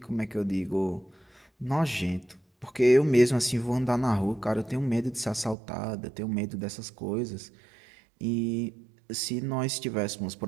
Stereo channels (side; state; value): left; drops out; at 5.6 s